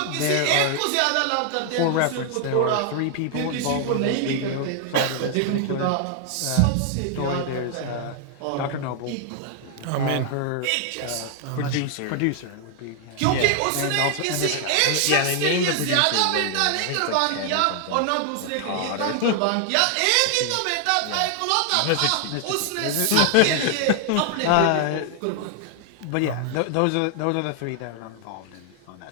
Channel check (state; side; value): different; both; correlation 0.00